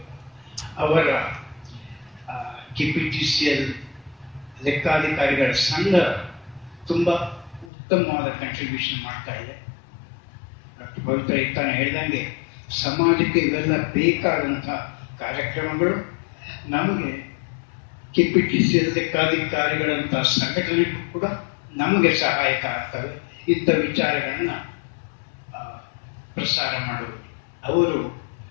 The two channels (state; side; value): drops out; right; at 7.7 s